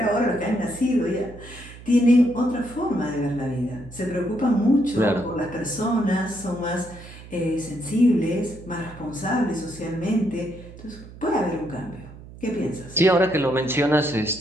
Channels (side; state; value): right; noise; hum, 17 dB below the sound